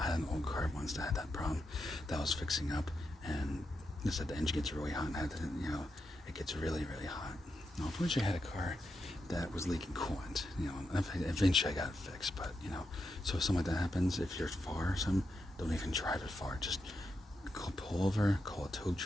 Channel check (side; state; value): both; normal; correlation 0.85